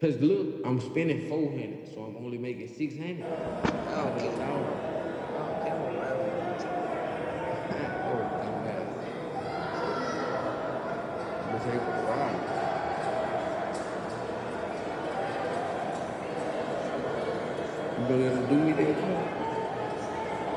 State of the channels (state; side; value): identical; both; correlation 1.00